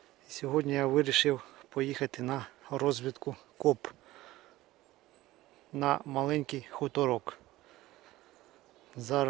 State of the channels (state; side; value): quieter; left; 17.2 dB